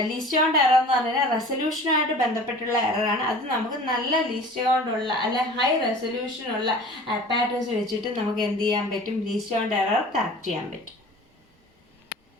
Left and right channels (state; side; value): normal; both; correlation 0.42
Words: ലീസ്റ്റ് കൗണ്ട് എറർ എന്ന് പറഞ്ഞാൽ റെസൊല്യൂഷനുമായിട്ട് ബന്ധപ്പെട്ടുള്ള എററാണ്. അത് നമുക്ക് നല്ല ലീസ്റ്റ് കൗണ്ടുള്ള അല്ലെ ഹൈ റെസൊല്യൂഷനുള്ള അപ്പാരറ്റസ് വെച്ചിട്ട് നമുക്ക് എന്ത് ചെയ്യാൻ പറ്റും, ലീസ്റ്റ് കൗണ്ട് എറർ കറക്റ്റ് ചെയ്യാൻ പറ്റും.